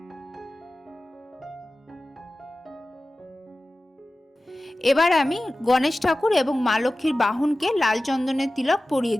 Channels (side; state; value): both; normal; correlation 0.96